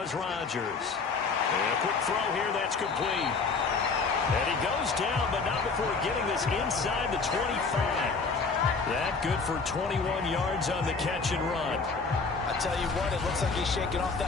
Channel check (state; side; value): quieter; right; 4.5 dB